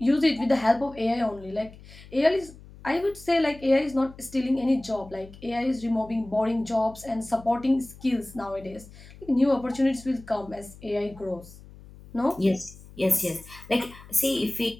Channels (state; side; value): noise; left; hum, 20 dB below the sound